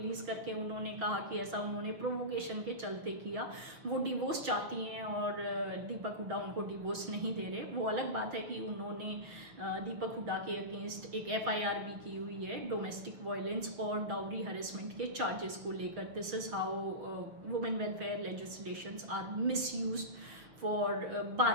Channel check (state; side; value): late; left; 6.8 ms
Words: करके उन्होंने कहा कि ऐसा उन्होंने प्रोवोकेशन के चलते किया। वो डिवोर्स चाहती हैं और दीपक हुडा उनको डिवोर्स नहीं दे रहे। वो अलग बात है कि उन्होंने दीपक हुडा के अगेंस्ट एक FIR भी की हुई है डोमेस्टिक वायलेंस और डाउरी हरेसमेंट के चार्जेस को लेकर। This is how women welfare legislations are misused for